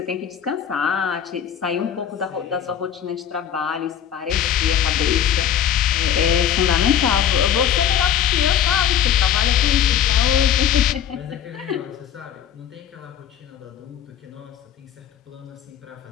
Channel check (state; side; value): quieter; right; 9.6 dB